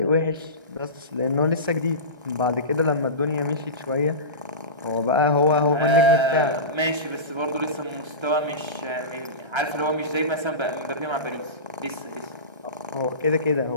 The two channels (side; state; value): left; late; 1.3 ms